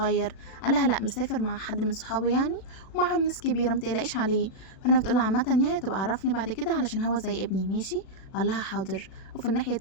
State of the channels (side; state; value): right; late; 37 ms